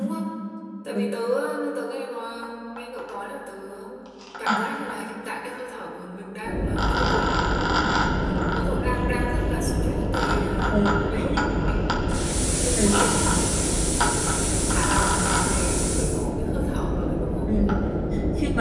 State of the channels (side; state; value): both; identical; correlation 1.00